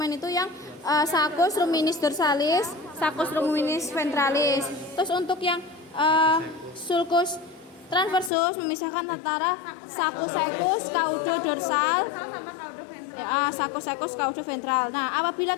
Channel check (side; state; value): right; drops out; at 8.3 s